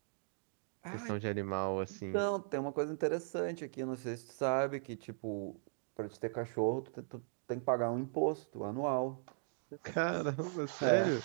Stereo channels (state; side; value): silent; left; digital silence